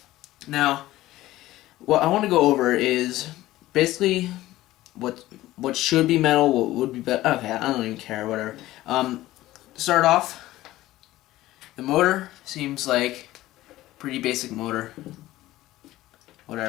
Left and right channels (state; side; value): quieter; right; 16.1 dB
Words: Now, what I want to go over is basically what should be metal, what would be better. Okay, I don't even care, whatever. To start off, the motor seems like pretty basic motor.